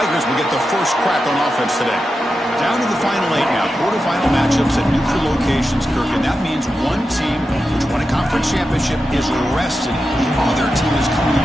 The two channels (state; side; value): normal; both; correlation 0.90